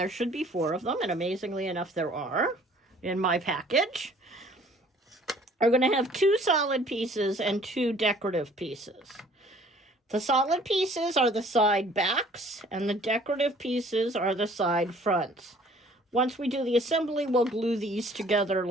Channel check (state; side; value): normal; both; correlation 0.54